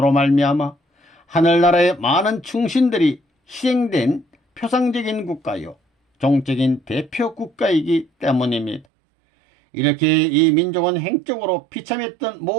말미암아 하늘나라의 많은 충신들이 희생된 표상적인 국가요 종적인 대표 국가이기 때문입니다. 이렇게 이 민족은 행적으로 비참했던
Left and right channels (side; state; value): left; drops out; at 8.8 s